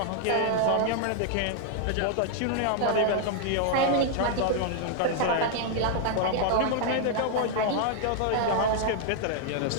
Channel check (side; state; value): both; different; correlation 0.00